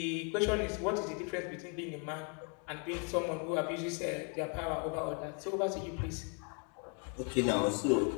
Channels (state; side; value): quieter; right; 35.1 dB